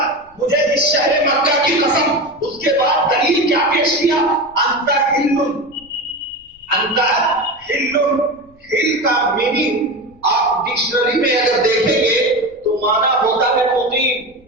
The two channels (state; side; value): noise; left; rumble, 29 dB below the sound